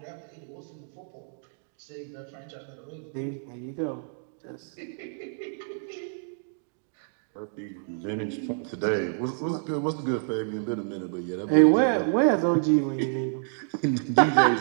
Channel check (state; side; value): silent; left; digital silence